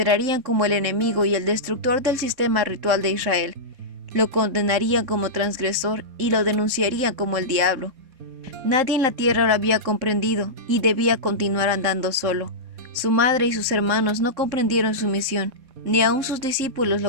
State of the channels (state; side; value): late; left; 3.7 ms